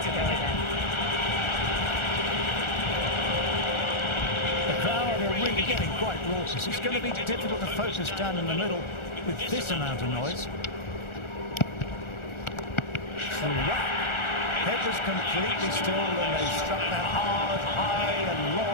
to go again. The crowd are really getting quite raucous. It's going to be difficult to focus down in the middle with this amount of noise. Head was completely still and they struck that hard, high and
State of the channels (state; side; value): late; right; 1.4 ms